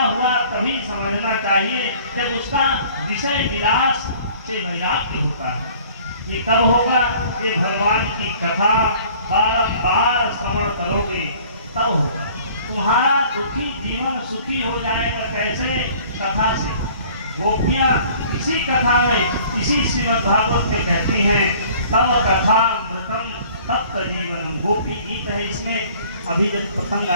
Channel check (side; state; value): both; inverted; correlation -0.52